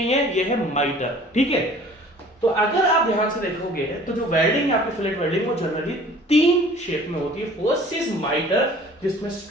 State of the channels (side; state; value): both; normal; correlation 0.49